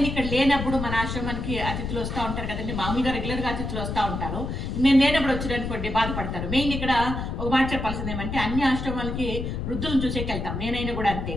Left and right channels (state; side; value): noise; left; rumble, 4 dB below the sound